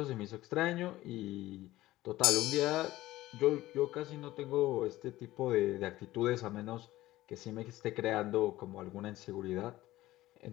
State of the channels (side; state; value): right; quieter; 16.5 dB